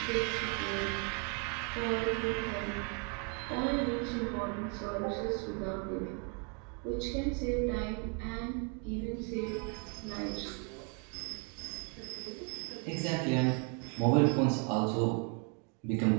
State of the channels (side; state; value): left; quieter; 37.3 dB